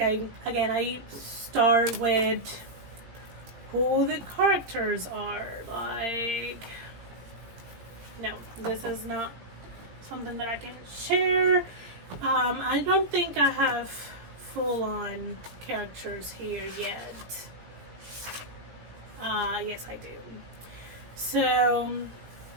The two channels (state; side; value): late; left; 18 ms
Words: I start with who the characters are. Like, no, this is not something that I can share. I don't think I have full-on characters here yet. Yes, I do. So,